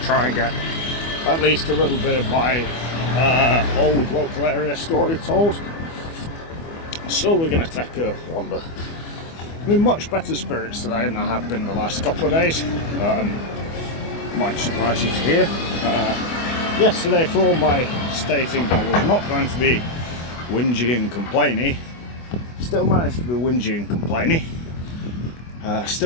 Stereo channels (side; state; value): right; late; 24 ms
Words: try and get at least a little bit of my old local area story told. So we're going to take a wander. I'm in much better spirits today than I have been the last couple of days. Might surprise you to hear. Yesterday, for all my stating I was not going to be whingy and complaining, still managed to be whingy and complaining.